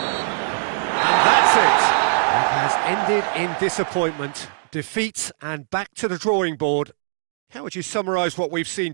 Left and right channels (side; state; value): left; silent; digital silence